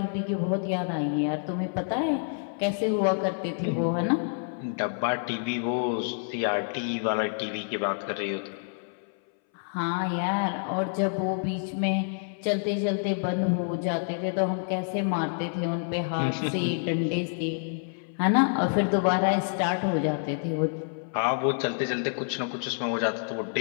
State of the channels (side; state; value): right; silent; 59 dB below the other